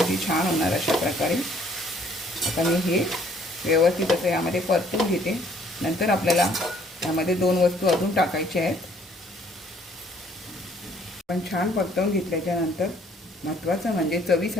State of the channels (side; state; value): both; normal; correlation 0.62